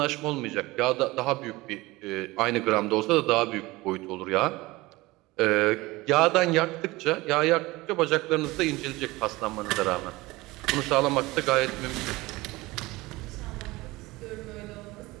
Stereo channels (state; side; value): quieter; left; 20.8 dB